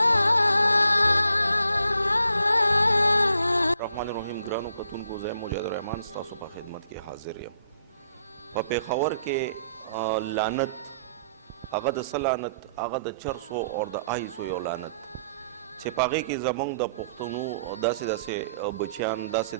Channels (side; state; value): both; inverted; correlation -0.70